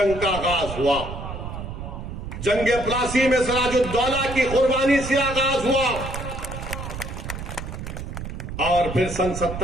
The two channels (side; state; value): right; noise; rumble, 8 dB below the sound